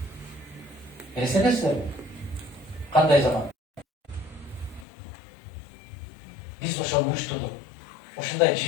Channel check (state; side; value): drops out; right; at 4.9 s